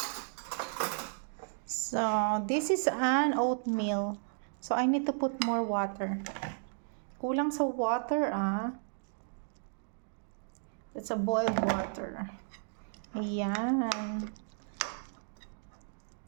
So, this is an oatmeal. So, I need to put more water. Kulang sa water, ah. It's a boiled water. Ayan.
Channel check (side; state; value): left; silent; digital silence